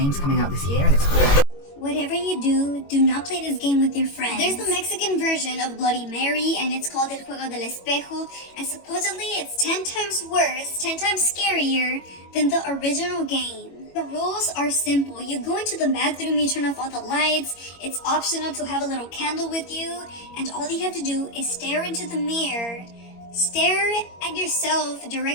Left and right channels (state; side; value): late; right; 21 ms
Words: coming out this year and it's called... Whatever you do not play this game with your friends. There's the Mexican version of Bloody Mary, and it's called El Juego del Espejo, and supposedly it's 10 times worse, 10 times scarier than the original game. The rules are simple. You go into the bathroom, you turn off all the lights, it's optional to have a little candle with you, and all you have to do is stare into the mirror. Stare at yourself